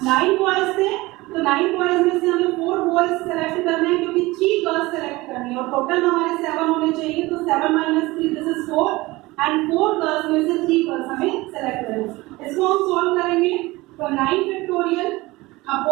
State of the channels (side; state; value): left; quieter; 20.8 dB